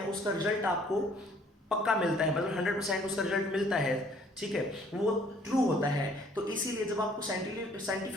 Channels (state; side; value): normal; both; correlation 0.59